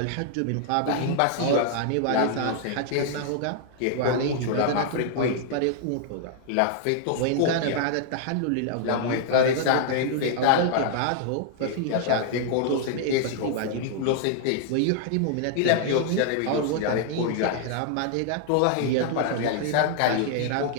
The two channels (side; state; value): both; different; correlation -0.01